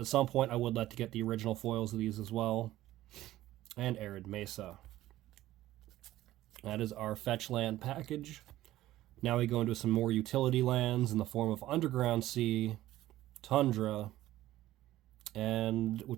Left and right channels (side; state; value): left; quieter; 15.0 dB